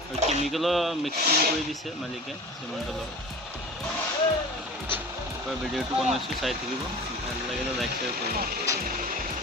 আৰু কেমিকেলৰ মিক্সিং কৰি দিছে মালিকে চিমেণ্টৰ লগত। ভিডিঅ'টো বনাইছোঁ, চাই থাকিব। ভাল লাগিলে লাইক শ্বেয়াৰ কৰিব।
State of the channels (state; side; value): normal; both; correlation 0.37